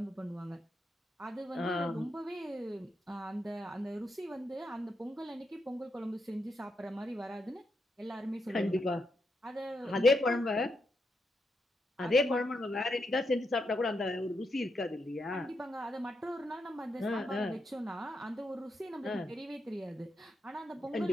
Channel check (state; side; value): normal; both; correlation 0.82